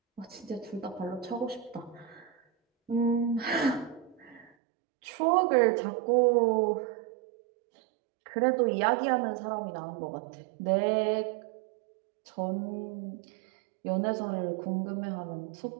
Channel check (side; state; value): left; drops out; at 4.5 s